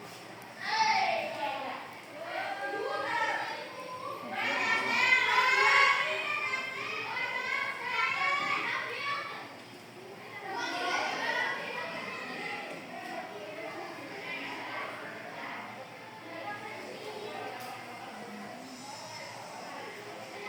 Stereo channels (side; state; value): both; identical; correlation 1.00